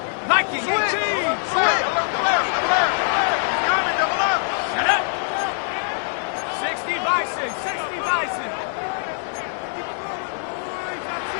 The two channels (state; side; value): silent; right; 63 dB below the other